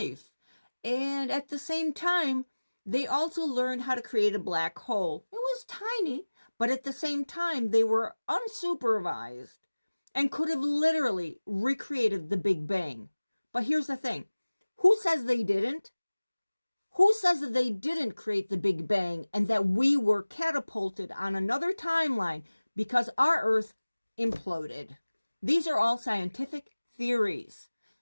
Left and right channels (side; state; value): both; inverted; correlation -1.00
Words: And at the same time, they also learned how to create a black hole. It was tiny, but at the same time, they were unsupervised and could have literally recreated the Big Bang. But here's the thing. Who says they didn't? Who says that they didn't create the Big Bang and that we were catapulted on another timeline because our Earth imploded? These are all scientific theories.